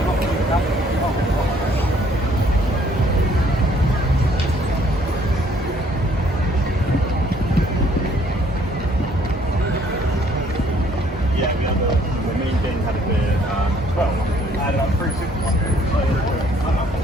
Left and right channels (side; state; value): both; normal; correlation 0.62